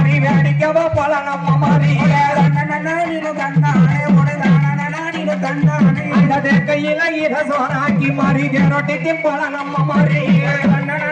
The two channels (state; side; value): identical; both; correlation 1.00